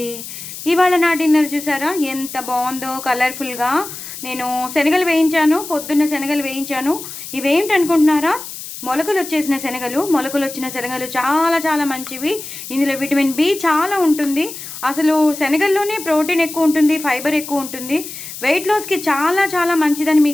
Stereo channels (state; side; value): noise; left; hiss, 11 dB below the sound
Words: ఇవాళ నా డిన్నర్ చూసారా ఎంత బాగుందో, కలర్ఫుల్గా. నేను శనగలు వేయించాను, పొద్దున్న శనగలు వేయించాను. ఇవేంటి అనుకుంటున్నారా? మొలకలు వచ్చేసిన శనగలు. మొలకలు వచ్చిన శనగలు చాలా చాలా మంచివి. ఇందులో విటమిన్ బి చాలా ఉంటుంది. అసలు శనగల్లోనే ప్రోటీన్ ఎక్కువ ఉంటుంది, ఫైబర్ ఎక్కువ ఉంటుంది. వెయిట్ లాస్కి చాలా చాలా మంచిదని